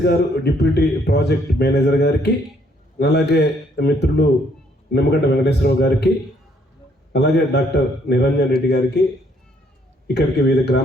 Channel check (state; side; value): normal; both; correlation 0.67